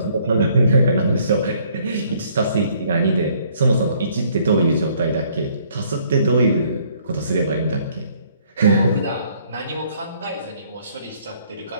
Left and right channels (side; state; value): both; inverted; correlation -0.63